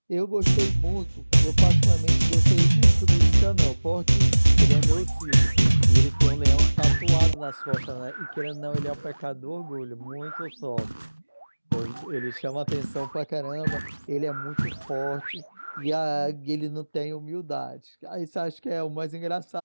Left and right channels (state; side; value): inverted; both; correlation -1.00